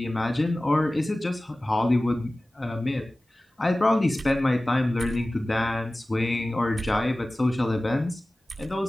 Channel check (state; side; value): normal; both; correlation 0.97